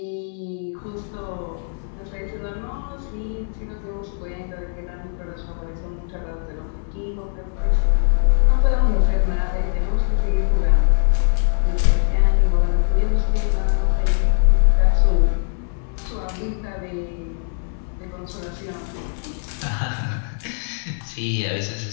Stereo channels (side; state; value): right; silent; 62 dB below the other